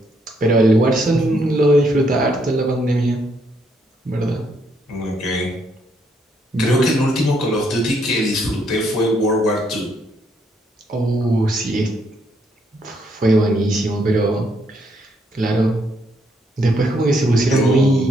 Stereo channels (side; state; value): both; normal; correlation 0.73